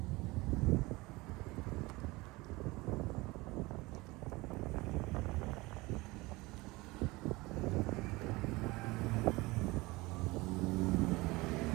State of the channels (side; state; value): left; quieter; 22.1 dB